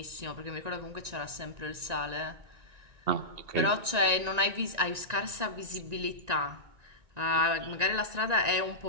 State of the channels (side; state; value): left; late; 1.9 ms